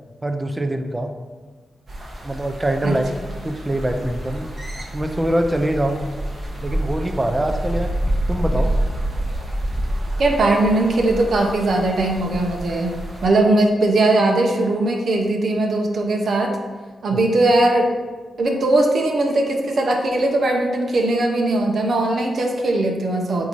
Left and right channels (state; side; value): normal; both; correlation 0.85